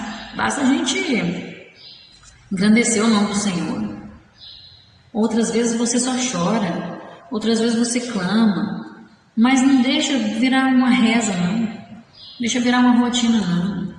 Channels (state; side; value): identical; both; correlation 1.00